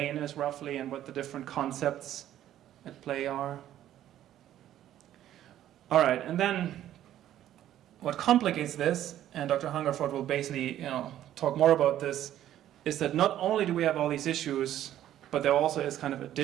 is roughly and what the different concepts at play are? All right, and then what complicates this, and Dr. Hungerford will basically, you know, talk more about this, is that not only do we have all these issues, but there also is kind of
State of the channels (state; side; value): quieter; left; 12.1 dB